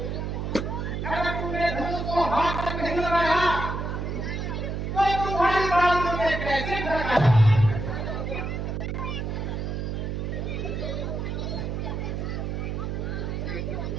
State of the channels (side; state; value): right; noise; hum, 3 dB below the sound